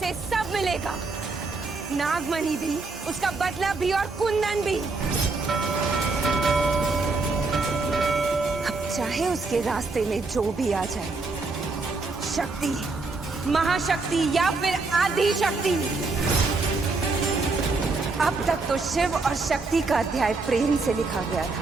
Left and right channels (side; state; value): left; quieter; 3.8 dB